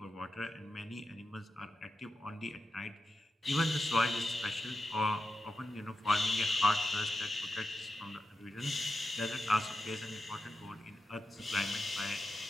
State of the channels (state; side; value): normal; both; correlation 0.90